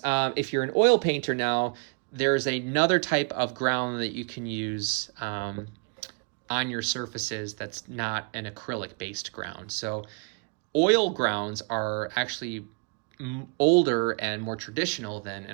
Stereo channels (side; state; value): left; quieter; 36.5 dB